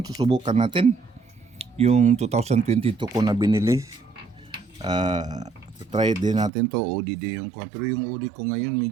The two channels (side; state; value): left; drops out; at 6.5 s